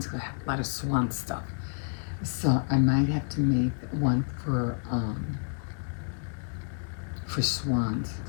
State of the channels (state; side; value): silent; right; digital silence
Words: I have a lot of swan stuff. So I might have to make one for swans,